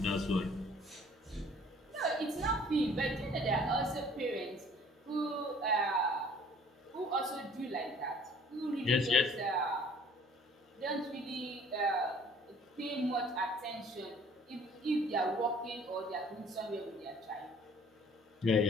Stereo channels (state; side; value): normal; both; correlation 0.54